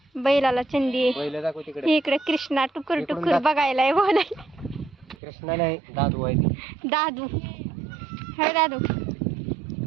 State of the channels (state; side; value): drops out; left; at 5.2 s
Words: बैलाला चंदी. बैल दाखव तिकडे. इकडे कृष्णा टुकर टुकर बघायला बोलाय. कृष्णा नाही दादू आहे ती. दादू. हे दादू